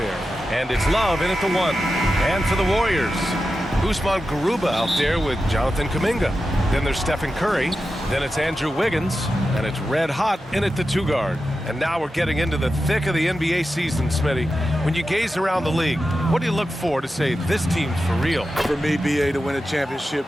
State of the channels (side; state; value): both; normal; correlation 0.91